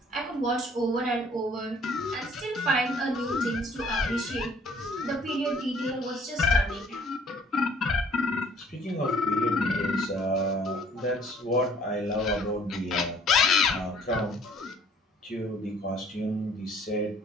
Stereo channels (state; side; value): normal; both; correlation 0.58